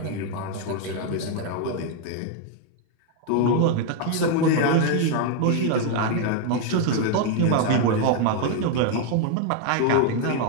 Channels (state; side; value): different; both; correlation 0.01